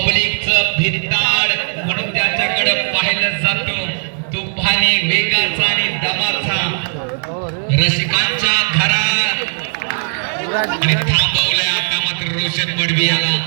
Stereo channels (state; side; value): silent; left; 66 dB below the other